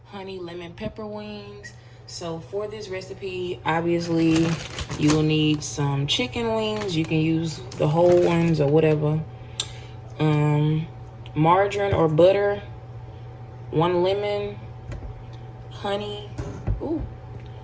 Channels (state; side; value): identical; both; correlation 1.00